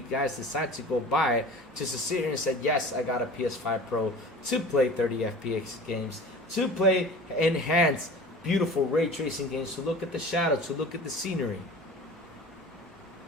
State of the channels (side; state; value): both; normal; correlation 0.39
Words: guys decide to go buy it just to sit here and say, yes, I got a PS5 Pro to play 30 FPS games, to play enhanced, beautiful ray tracing games, to look at the shadow, to look at the scenery.